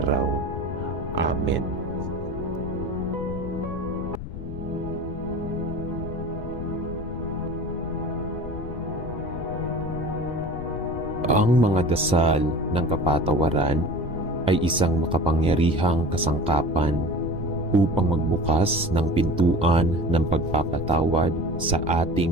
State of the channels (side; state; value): left; noise; rumble, 9 dB below the sound